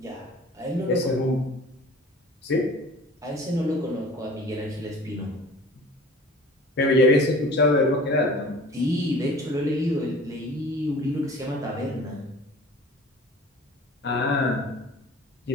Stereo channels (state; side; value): normal; both; correlation 0.44